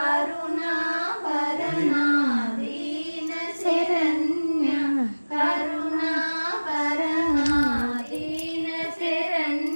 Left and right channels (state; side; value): inverted; both; correlation -1.00